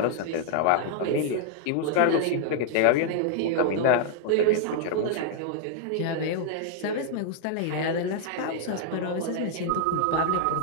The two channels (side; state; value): both; different; correlation -0.01